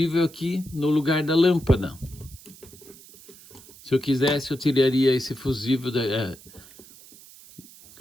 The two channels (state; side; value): noise; right; hiss, 21 dB below the sound